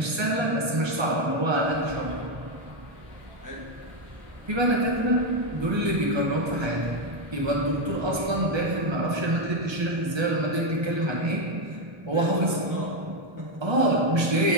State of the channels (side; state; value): left; late; 1.3 ms